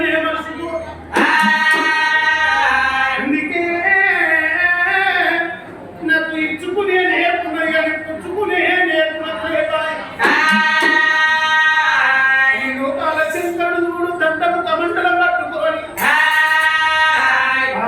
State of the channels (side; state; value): both; identical; correlation 1.00